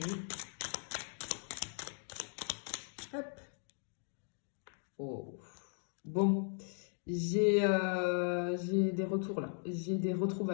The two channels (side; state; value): right; silent; 52 dB below the other